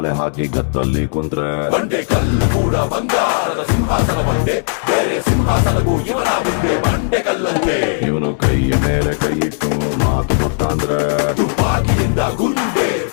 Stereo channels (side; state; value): right; silent; 69 dB below the other